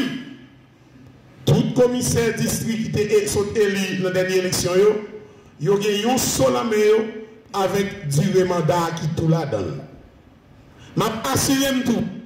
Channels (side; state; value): both; identical; correlation 1.00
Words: tout commissaire district qui est élu dans la dernière élection, il y a un seul avec durée mandat qui tout la donne. Je m'assure tout.